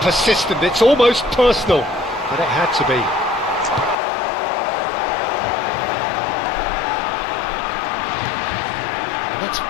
It's almost personal, but it had to be. And that's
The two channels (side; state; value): right; drops out; at 4.0 s